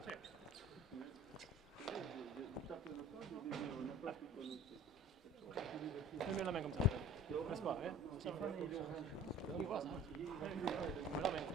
Mets la main comme ça. Laisse pas, hein.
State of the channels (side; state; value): both; normal; correlation 0.46